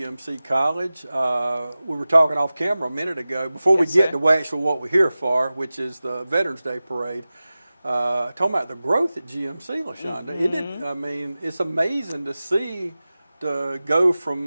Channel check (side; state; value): both; inverted; correlation -0.96